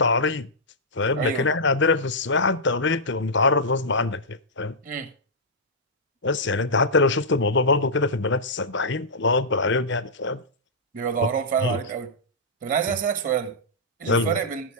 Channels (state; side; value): normal; both; correlation -0.12